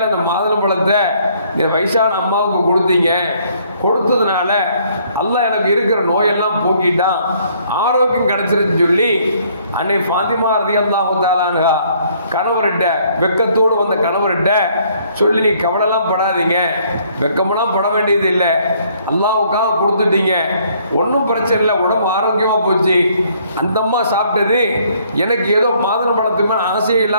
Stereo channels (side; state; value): both; inverted; correlation -0.64